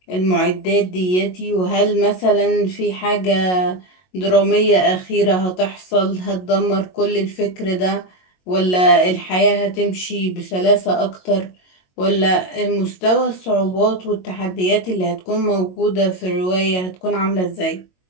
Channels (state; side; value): late; right; 22 ms